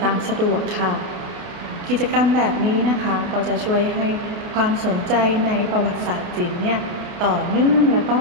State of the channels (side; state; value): left; late; 28 ms